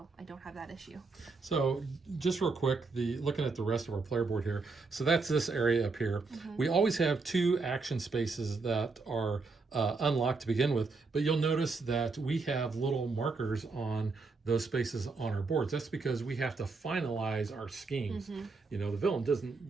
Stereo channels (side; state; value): left; quieter; 4.1 dB